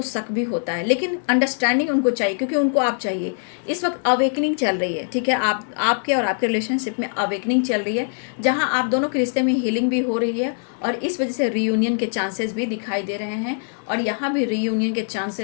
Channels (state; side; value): silent; right; digital silence